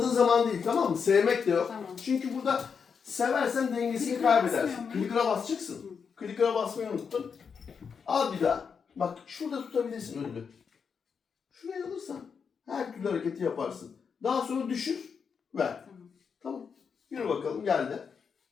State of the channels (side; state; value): right; quieter; 6.2 dB